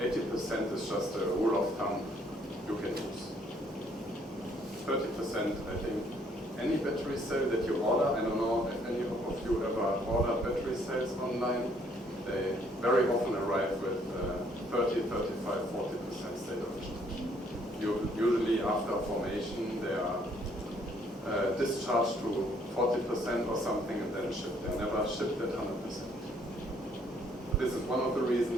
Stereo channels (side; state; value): both; normal; correlation 0.66